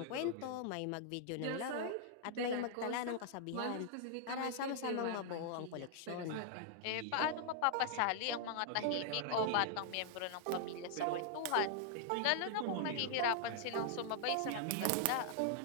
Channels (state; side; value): different; both; correlation -0.01